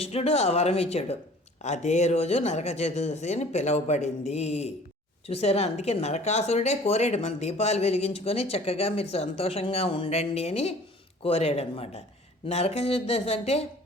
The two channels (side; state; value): both; normal; correlation 0.49